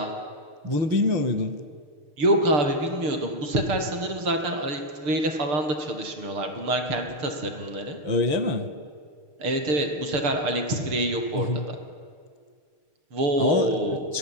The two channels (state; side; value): late; left; 6.5 ms